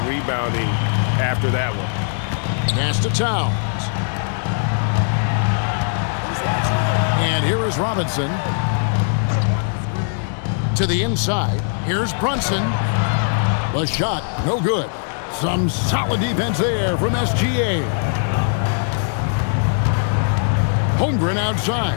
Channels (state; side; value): silent; right; digital silence